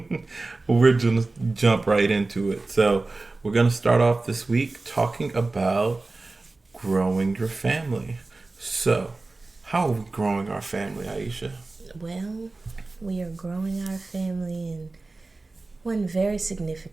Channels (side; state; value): left; quieter; 3.4 dB